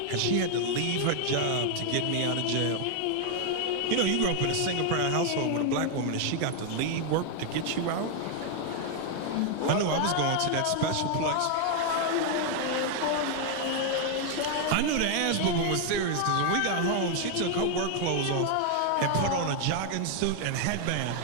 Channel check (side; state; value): both; different; correlation 0.00